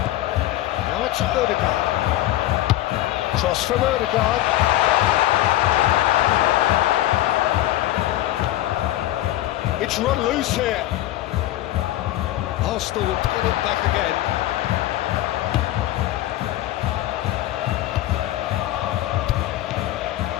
Now it's Odegaard. Cross from Odegaard. It's run loose here. Arsenal will get it back again.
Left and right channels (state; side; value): quieter; right; 15.0 dB